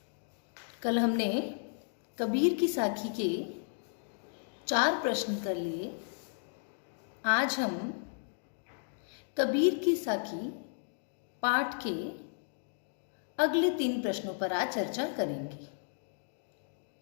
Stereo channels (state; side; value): silent; right; digital silence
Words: कल हमने कबीर की साखी के 4 प्रश्न कर लिए। आज हम कबीर की साखी पाठ के अगले 3 प्रश्नों पर आज चर्चा करेंगे,